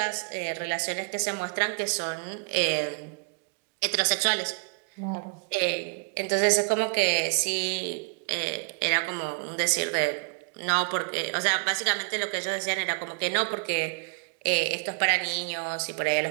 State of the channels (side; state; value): left; quieter; 36.3 dB